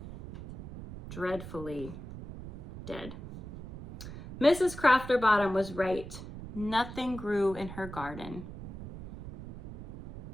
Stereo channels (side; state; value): right; noise; rumble, 12 dB below the sound